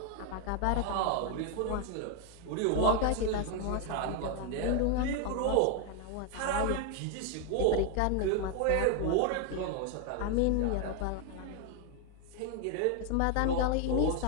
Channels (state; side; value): different; both; correlation 0.01